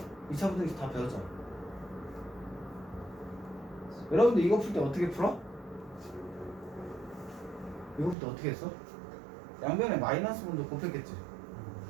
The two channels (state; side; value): drops out; left; at 8.2 s